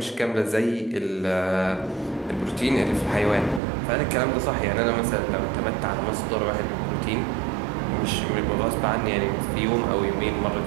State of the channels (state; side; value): drops out; left; at 3.6 s